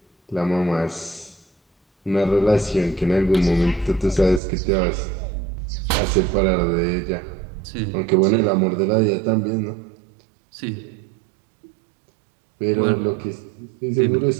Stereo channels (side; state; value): left; drops out; at 4.4 s